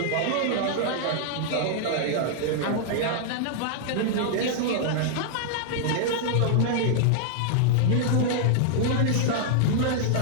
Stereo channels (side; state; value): both; different; correlation -0.01